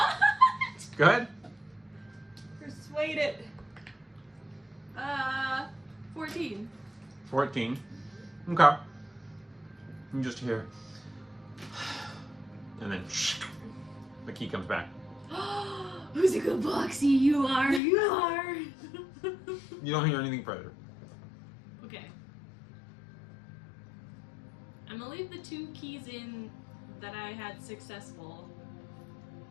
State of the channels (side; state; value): right; drops out; at 17.8 s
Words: Go ahead. Persuade it. 14. 14. Okay. You just hear. And then the key comes back. Whimsical Boxy, you are, you are. You don't hear anything further. Okay. I'm gonna leave the 2 keys in that I had successful,